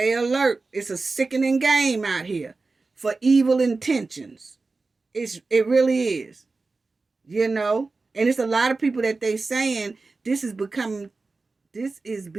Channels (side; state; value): left; quieter; 3.8 dB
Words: alert. It's a sickening game out here for evil intentions. It really is. You know? And it's a lot of people that they saying this is being